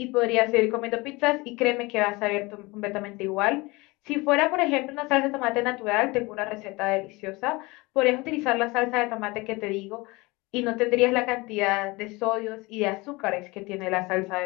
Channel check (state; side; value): quieter; right; 23.8 dB